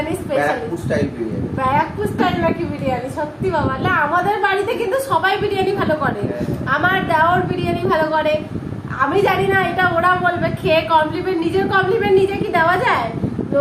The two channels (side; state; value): both; identical; correlation 1.00